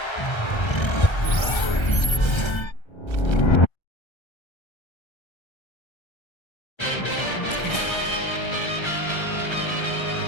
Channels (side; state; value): right; late; 1.3 ms